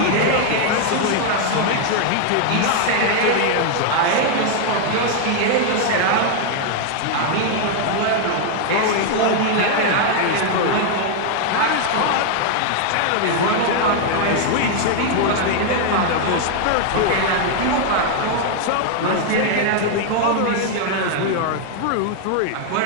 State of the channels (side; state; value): both; different; correlation 0.00